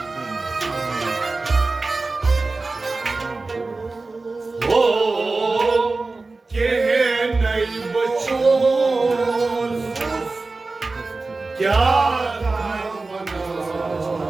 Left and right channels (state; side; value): quieter; left; 3.6 dB